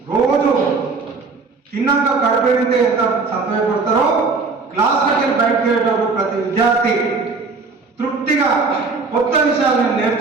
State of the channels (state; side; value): quieter; left; 4.3 dB